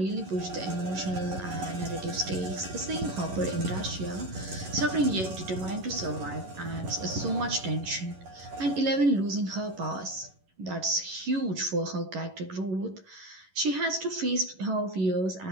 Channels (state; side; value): late; left; 11 ms